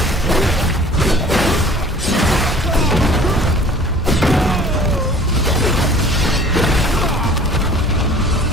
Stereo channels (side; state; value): both; normal; correlation 0.49